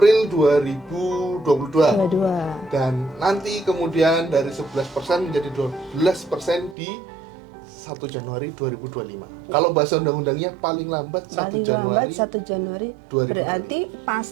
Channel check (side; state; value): left; drops out; at 6.8 s